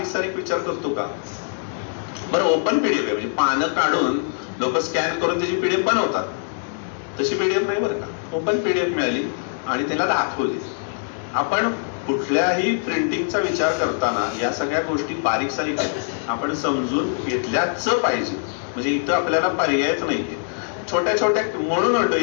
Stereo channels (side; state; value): right; silent; digital silence